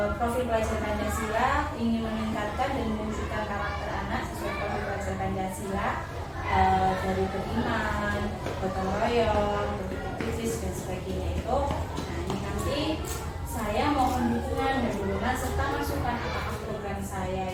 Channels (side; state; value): both; identical; correlation 1.00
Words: profil pelajar Pancasila, ingin meningkatkan dan mewujudkan karakter anak sesuai profil pelajar Pancasila, dari beriman, gotong royong, berpikir dan sebagainya itu. Nah, ini nanti saya mohon dukungan dan dukungan serta masukan apakah program saya